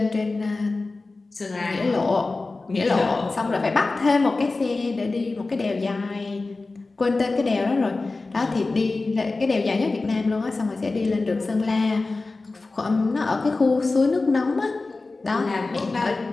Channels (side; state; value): right; quieter; 3.5 dB